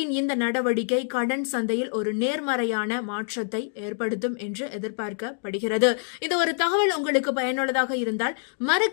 இந்த நடவடிக்கை கடன் சந்தையில் ஒரு நேர்மறையான மாற்றத்தை ஏற்படுத்தும் என்று எதிர்பார்க்கப்படுகிறது. இந்த ஒரு தகவல் உங்களுக்கு பயனுள்ளதாக இருந்தால்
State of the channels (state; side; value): silent; right; 61 dB below the other